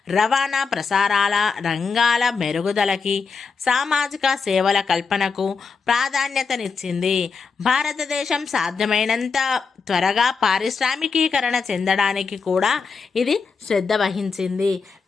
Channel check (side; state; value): right; quieter; 5.1 dB